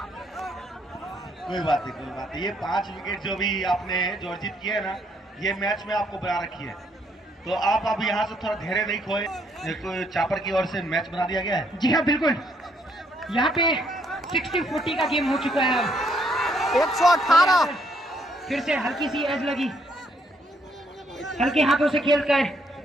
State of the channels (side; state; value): both; normal; correlation 0.71